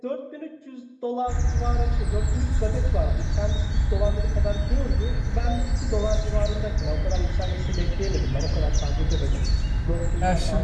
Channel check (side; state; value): both; identical; correlation 1.00